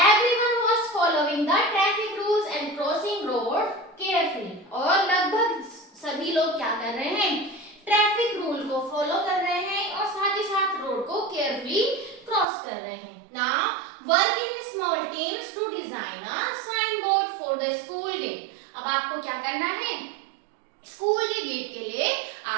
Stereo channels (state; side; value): drops out; left; at 12.5 s